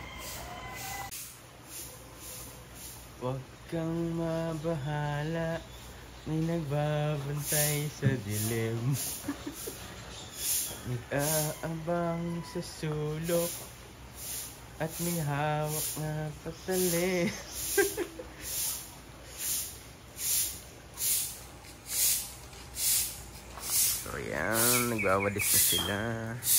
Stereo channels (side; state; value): both; identical; correlation 1.00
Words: Huwag kang mabahala, may nagbabantay sa dilim. Nag-aabang sa sulok at may hawak na patali. So yan, nagwawadis na sila.